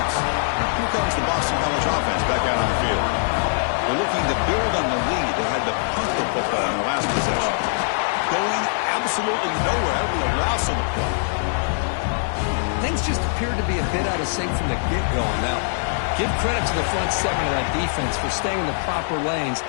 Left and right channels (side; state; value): right; silent; 64 dB below the other